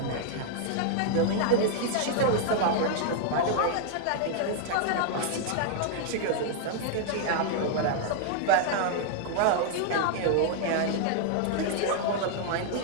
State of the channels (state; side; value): different; both; correlation -0.01